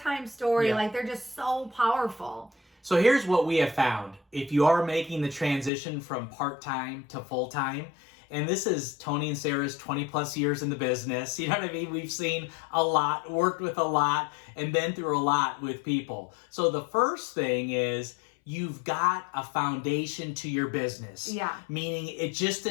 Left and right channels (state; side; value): drops out; right; at 5.7 s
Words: story. Like, they're just so powerful. So here's what we have found. If you are making the transition from part-time to full-time, and this is Tony and Sarah's 20 plus years in the business, you know what I mean? We've seen a lot, worked with a lot, and been through a lot with people. So the first thing is, you've got a foundation to your business. Yeah. Meaning it just